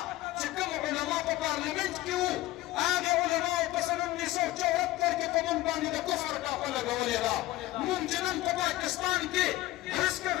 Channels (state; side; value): quieter; right; 17.2 dB